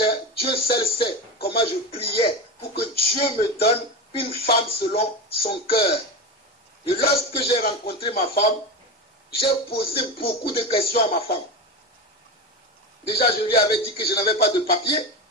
Dieu seul sait comment je priais pour que Dieu me donne une femme selon son cœur. Et lorsque j'ai rencontré ma femme, j'ai posé beaucoup de questions à ma femme. Déjà, je lui avais dit que je n'avais pas de papier.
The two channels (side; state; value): both; normal; correlation 0.20